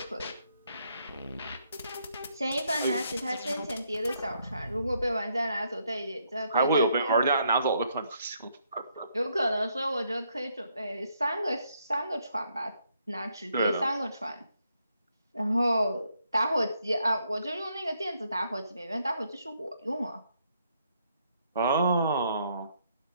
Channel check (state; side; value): inverted; both; correlation -0.74